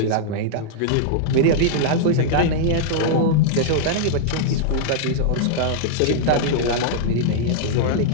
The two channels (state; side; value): different; both; correlation -0.01